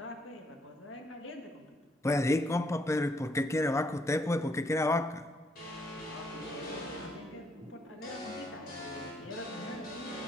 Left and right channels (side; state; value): both; normal; correlation 0.71